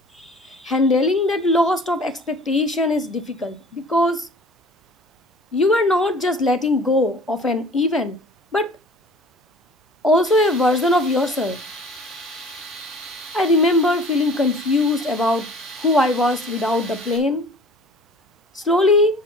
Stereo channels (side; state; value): both; normal; correlation 0.47